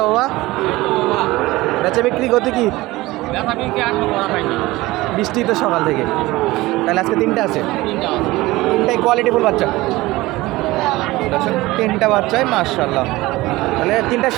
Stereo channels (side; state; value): left; quieter; 19.4 dB